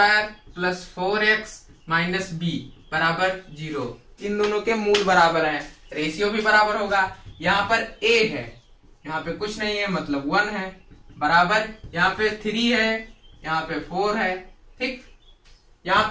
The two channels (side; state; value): both; identical; correlation 1.00